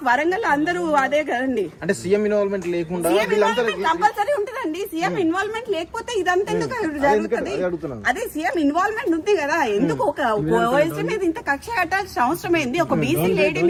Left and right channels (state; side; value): identical; both; correlation 1.00